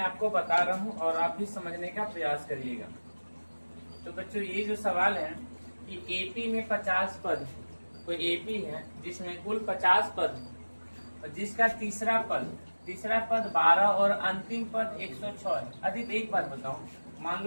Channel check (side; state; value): both; inverted; correlation -1.00